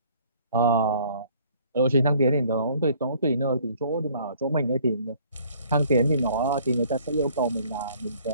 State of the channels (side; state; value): both; inverted; correlation -0.57